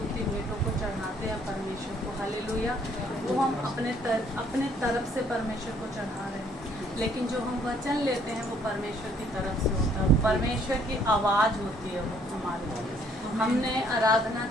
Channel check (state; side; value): normal; both; correlation 0.64